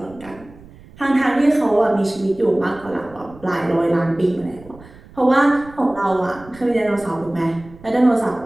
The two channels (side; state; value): right; noise; rumble, 22 dB below the sound